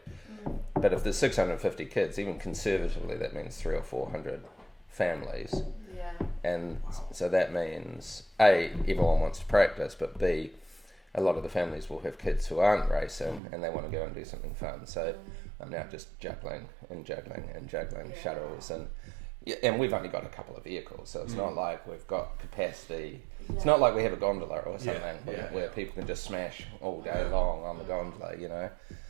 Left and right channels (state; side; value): drops out; left; at 13.4 s